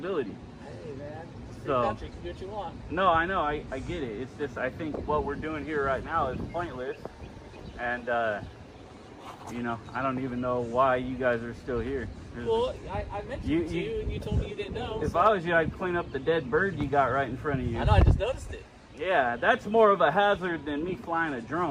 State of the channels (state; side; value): identical; both; correlation 1.00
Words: Hey man, it's so country. You can do what you want. No, I know. I get it. It's just I think what we're doing here right now is pointless, and you know, I don't even know why you guys are still here. Well, I mentioned it to you, and you told me you didn't know. If I was you, I'd clean up the dead bird you got right in front of you. I know, I just noticed it. Yeah, that's more of a hazard than me flying a